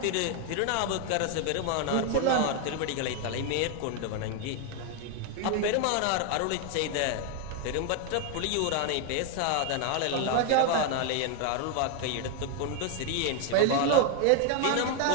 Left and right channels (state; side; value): different; both; correlation 0.01